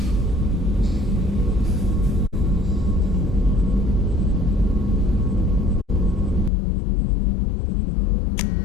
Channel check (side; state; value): right; drops out; at 6.5 s